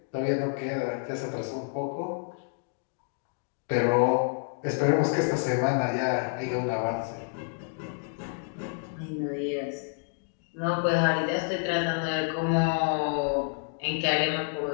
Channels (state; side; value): silent; right; 59 dB below the other